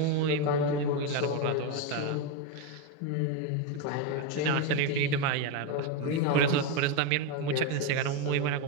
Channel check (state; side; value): different; both; correlation 0.03